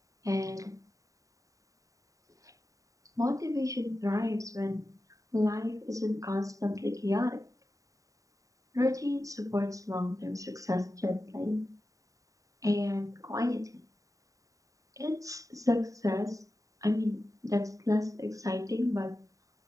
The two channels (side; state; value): left; late; 0.16 ms